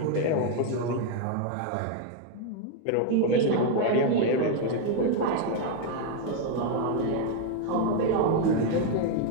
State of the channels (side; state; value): both; different; correlation 0.00